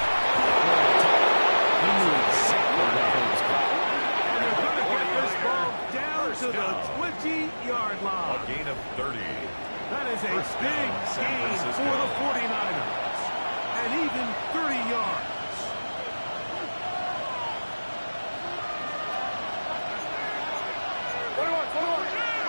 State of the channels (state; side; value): inverted; both; correlation -1.00